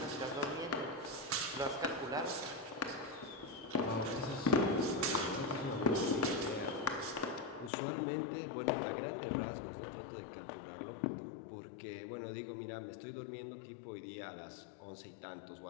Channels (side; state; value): right; drops out; at 7.7 s